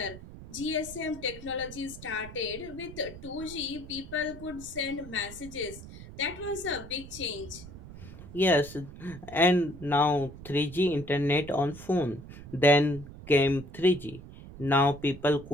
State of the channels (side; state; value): right; noise; rumble, 15 dB below the sound